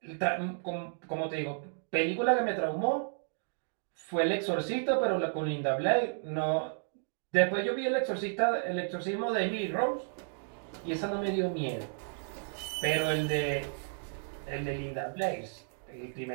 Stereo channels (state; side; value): silent; left; digital silence